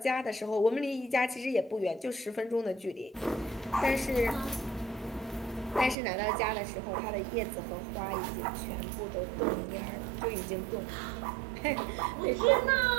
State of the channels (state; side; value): drops out; left; at 6.0 s